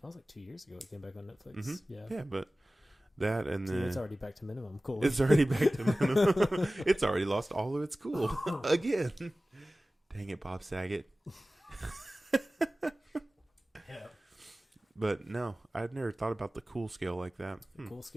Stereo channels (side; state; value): both; normal; correlation 0.97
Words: like 2 years ago. It came back on Netflix. Mm-hmm. Yeah. Yeah, but that and then it's already back to minimum cool. It's already back to minimum. It's already lost all of its cool again. Dang it, Bob Saget. Yeah. But no, I'd never thought about the cool scale like that. The cool